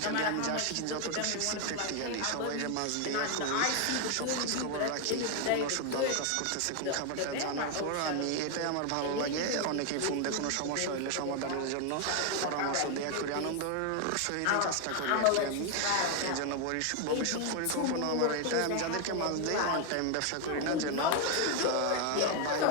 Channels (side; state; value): both; different; correlation 0.01